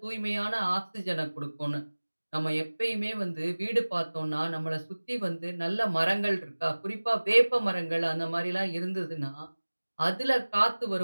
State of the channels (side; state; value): both; inverted; correlation -1.00